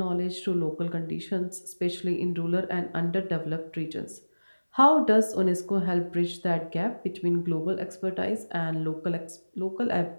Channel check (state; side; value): inverted; both; correlation -1.00